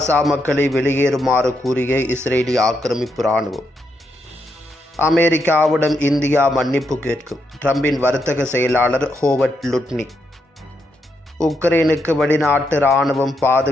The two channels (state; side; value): normal; both; correlation 0.80